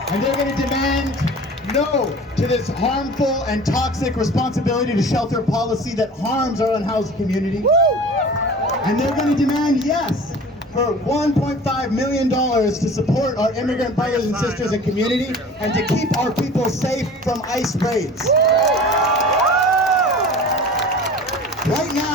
and they're going to demand no to this harmful and toxic responsibility to shelter policy that harms our unhoused community. And they're going to demand yes for $1.5 million to support our immigrant brothers and sisters and community and to keep our people safe from ICE raids. Right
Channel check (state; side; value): normal; both; correlation 0.41